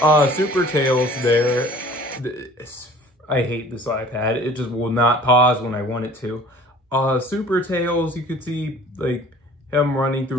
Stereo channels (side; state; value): both; normal; correlation 0.49